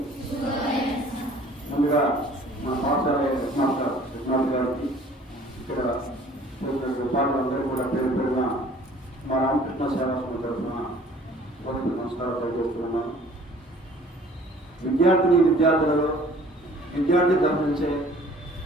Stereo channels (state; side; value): normal; both; correlation 0.52